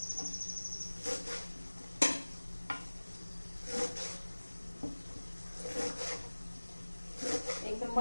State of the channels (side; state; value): both; inverted; correlation -1.00